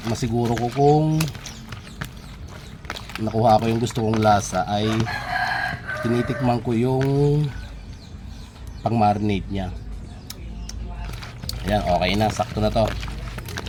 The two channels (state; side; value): identical; both; correlation 1.00